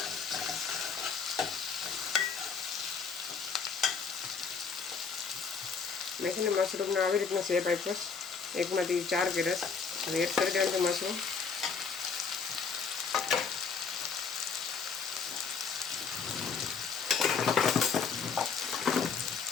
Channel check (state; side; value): quieter; right; 5.7 dB